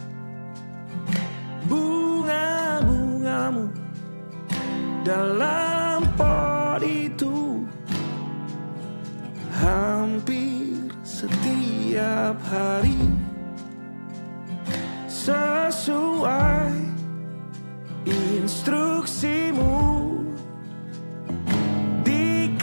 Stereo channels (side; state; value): both; inverted; correlation -1.00